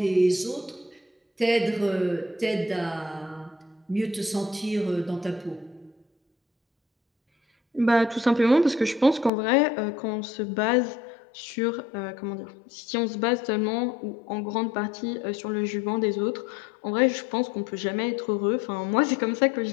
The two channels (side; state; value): right; drops out; at 9.3 s